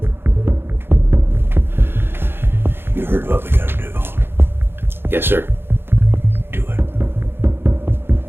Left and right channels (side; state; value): left; late; 0.11 ms